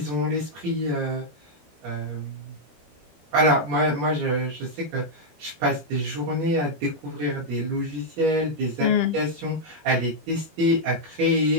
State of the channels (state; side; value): late; left; 13 ms